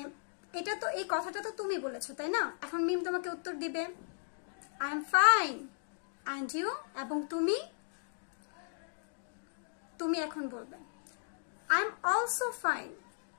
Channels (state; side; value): silent; right; digital silence